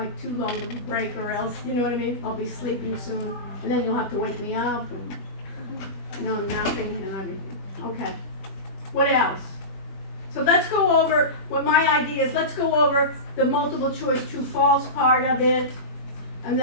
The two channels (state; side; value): late; right; 21 ms